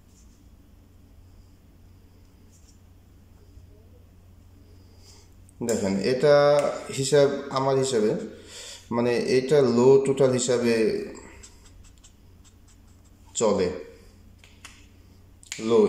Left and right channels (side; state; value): both; identical; correlation 1.00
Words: দেখেন এটা হিসাব আমার হিসাবে, মানে এটা লো টোটাল হিসাবে চলে। লো